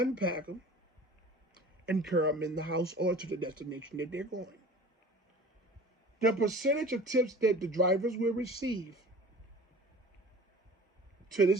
them and carry them in the house or to the destination that they're going. The percentage of tips that the drivers will receive to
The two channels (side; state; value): both; normal; correlation 0.43